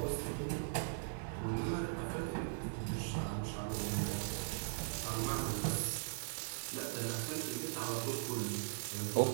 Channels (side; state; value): left; silent; 51 dB below the other